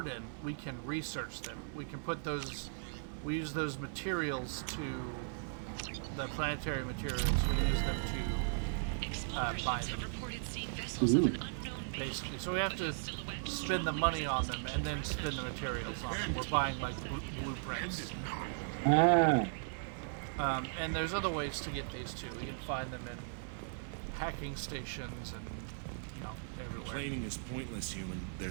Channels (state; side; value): silent; left; digital silence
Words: we can research them. We can put those. We use those materials to the planetary materials. We use them to buy them. Basically, so we have to spend the money on them and then spend the materials on them. We're buying like blueprints. Ah. And there's other ways to get these too. We can find them in hacking stations and everywhere. Complaining is pointless, human.